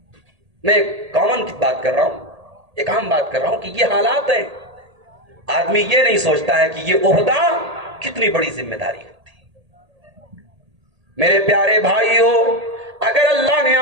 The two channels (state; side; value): late; left; 1.8 ms